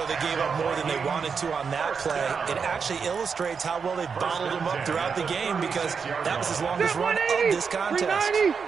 they gave up more than they wanted to on that play, it actually illustrates how well they bottled him up throughout the game because that was his longest run of this contest.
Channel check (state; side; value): quieter; left; 5.9 dB